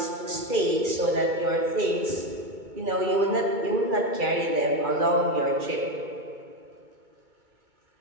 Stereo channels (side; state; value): left; late; 2.2 ms